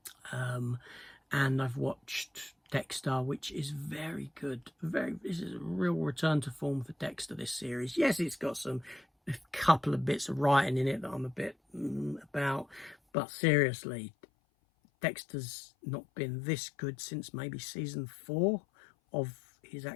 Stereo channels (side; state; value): right; drops out; at 13.0 s